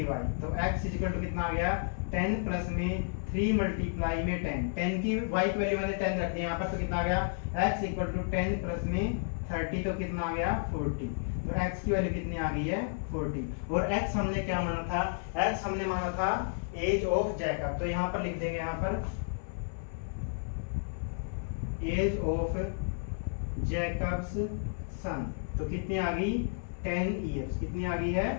तो x इज इक्वल टू कितना आ गया 10 प्लस में 3 मल्टीप्लाई में 10 की y की वैल्यू मैंने 10 रख दी यहाँ पर, तो कितना आ गया x इक्वल टू 10 प्लस में 30 तो कितना आ गया 40, तो x की वैल्यू कितनी आ गई है 40। और x हमने क्या माना था, x हमने माना था एज ऑफ जैकब, तो यहाँ पर लिख देंगे यहाँ पर एज ऑफ जैकब्स सन, तो कितनी आ गई 10 इयर्स, कितनी आ गई है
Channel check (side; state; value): right; silent; 56 dB below the other